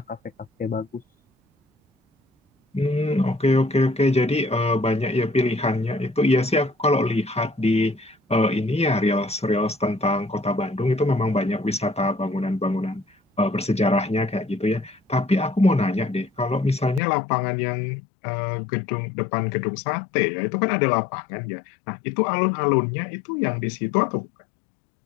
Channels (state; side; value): drops out; right; at 17.0 s